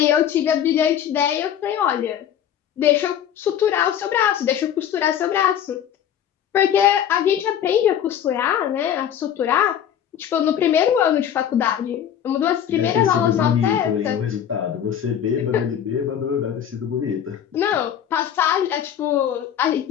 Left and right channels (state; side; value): quieter; right; 9.6 dB